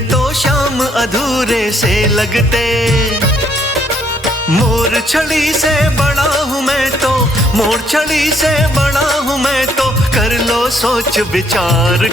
तो श्याम अधूरे से लगते। मोर छड़ी से बड़ा हूँ मैं तो, मोर छड़ी से बड़ा हूँ मैं तो, कर लो सोच विचार।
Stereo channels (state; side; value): normal; both; correlation 0.68